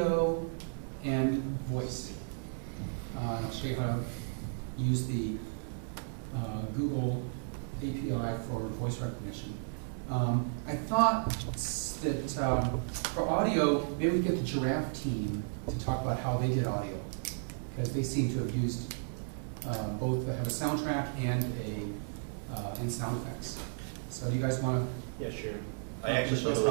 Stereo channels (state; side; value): silent; left; 55 dB below the other